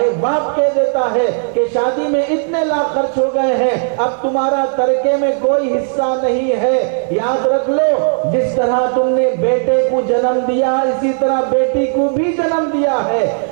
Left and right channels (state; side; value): silent; left; 61 dB below the other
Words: باپ کہہ دیتا ہے کہ شادی میں اتنے لاکھ خرچ ہو گئے ہیں، اب تمہارا ترکے میں کوئی حصہ نہیں ہے۔ یاد رکھ لو، جس طرح تم نے بیٹے کو جنم دیا اسی طرح بیٹی کو بھی جنم دیا ہے۔